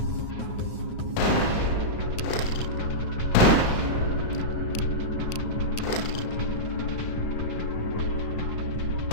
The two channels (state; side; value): late; right; 9.3 ms